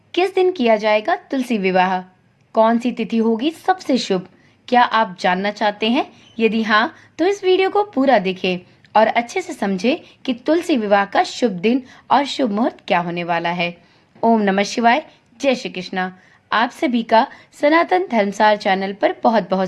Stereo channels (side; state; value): both; identical; correlation 1.00